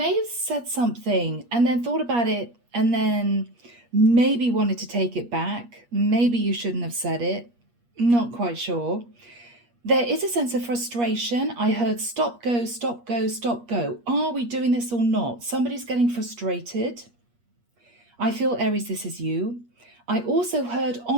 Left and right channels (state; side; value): late; left; 8.4 ms